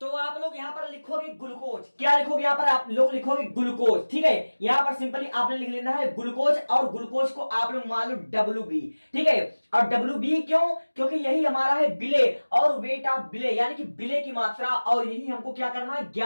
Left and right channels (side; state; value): both; inverted; correlation -1.00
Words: तो आप लोग यहां पर लिखोगे ग्लूकोज, क्या लिखोगे यहां पर आप लोग लिखोगे ग्लूकोज, ठीक है। यहां पर सिंपली आपने लिख लेना है ग्लूकोज और ग्लूकोज को आप लोग मान लो WB, ठीक है। और WB क्यों, क्योंकि यही हमारा है बिले और वेट ऑफ बिले, यानी कि बिले की मात्रा, और यही हमको क्या करना है